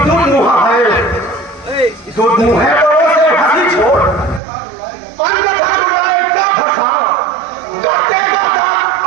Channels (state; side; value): drops out; left; at 4.4 s